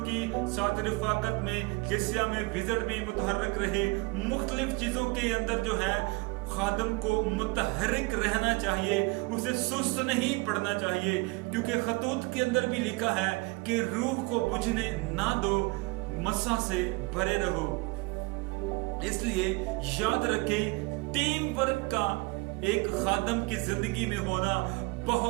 साथ रिफाकत में, कलीसिया में विजिट में मुतहर्रिक रहे। मुख्तलिफ चीजों के अंदर जो है खादम को मुतहर्रिक रहना चाहिए, उसे सुस्त नहीं पड़ना चाहिए, क्योंकि खतूत के अंदर भी लिखा है कि रूह को बुझने ना दो, मसा से भरे रहो। इसलिए याद रखें, टीम वर्क का एक खादम की जिंदगी में होना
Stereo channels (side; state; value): left; quieter; 25.8 dB